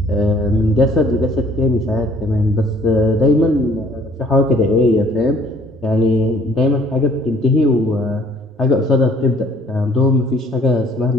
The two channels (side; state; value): both; normal; correlation 0.58